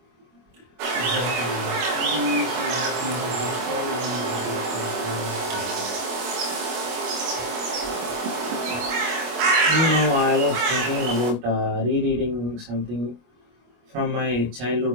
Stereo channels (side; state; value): left; late; 25 ms